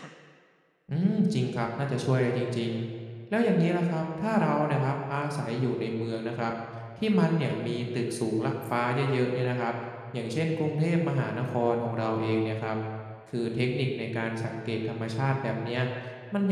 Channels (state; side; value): identical; both; correlation 1.00